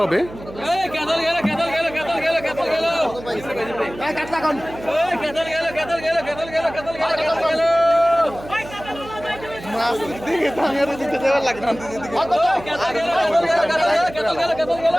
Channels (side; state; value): right; noise; hum, 15 dB below the sound